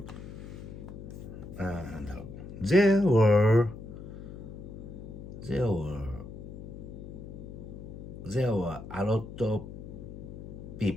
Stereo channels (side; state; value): left; noise; hum, 11 dB below the sound